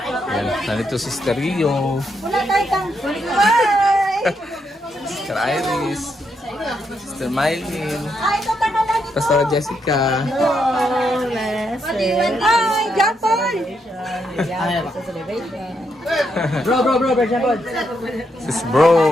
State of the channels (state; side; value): normal; both; correlation 0.79